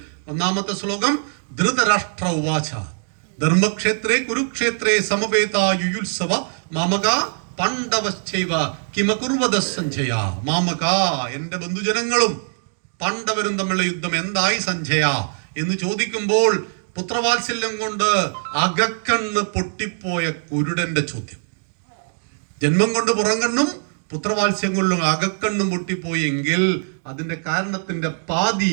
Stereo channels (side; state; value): left; silent; digital silence